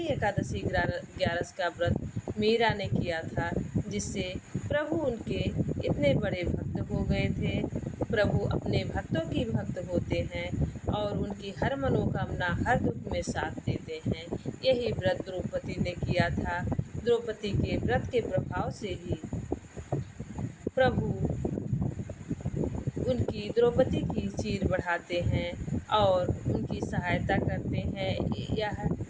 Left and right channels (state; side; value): identical; both; correlation 1.00